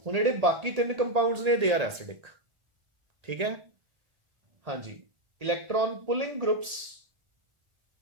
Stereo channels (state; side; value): late; left; 1.7 ms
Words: ਹੁਣ ਜਿਹੜੇ ਬਾਕੀ 3 ਕੰਪਾਊਂਡਸ ਨੇ ਦੇ ਆਰ ਐਸਿਡਿਕ, ਠੀਕ ਹੈ। ਹਾਂਜੀ, ਇਲੈਕਟ੍ਰੋਨ ਪੁਲਿੰਗ ਗਰੁੱਪਸ,